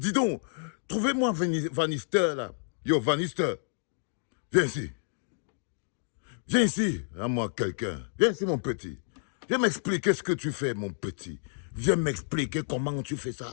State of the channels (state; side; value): silent; right; digital silence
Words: donc, trouvez-moi Vanister là. Yo, Vanister, viens ici. Viens ici, à moi quelqu'un. Viens ici mon petit. Viens m'expliquer ce que tu fais mon petit. Viens m'expliquer comment tu fais